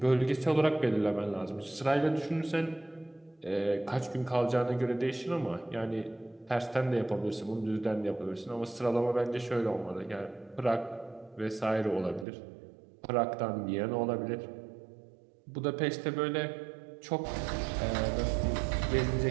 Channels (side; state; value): left; drops out; at 12.2 s